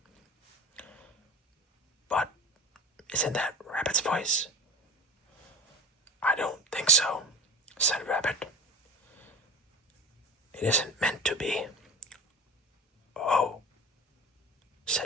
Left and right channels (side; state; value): both; normal; correlation 0.30